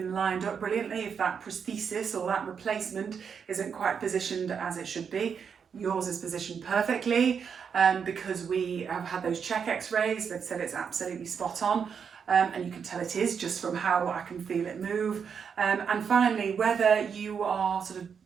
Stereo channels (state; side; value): quieter; left; 6.7 dB